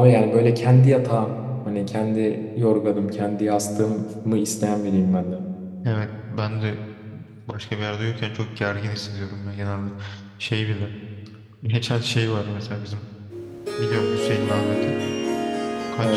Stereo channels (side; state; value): both; identical; correlation 1.00